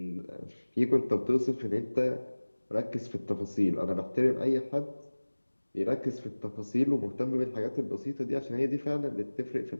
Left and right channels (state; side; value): inverted; both; correlation -1.00